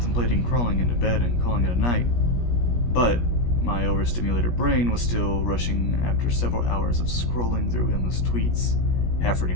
crawling into bed and calling it a night, but my overstimulated brain was still rushing after several hours of scrolling through endless tweets,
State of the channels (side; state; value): right; late; 17 ms